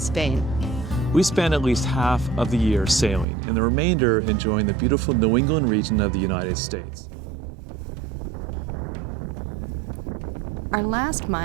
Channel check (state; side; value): drops out; left; at 3.2 s